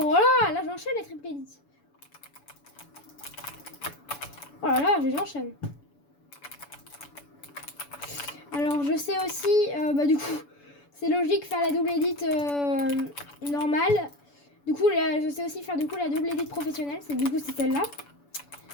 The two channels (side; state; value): right; late; 7.0 ms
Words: là, j'enchaîne les triple edits. Oh là, j'enchaîne. Alors, je sais aussi, du coup, c'est logique faire la double edit normale. Du coup, je sais aussi faire du coup la double edit professionnelle. Du coup, c'est celle-là.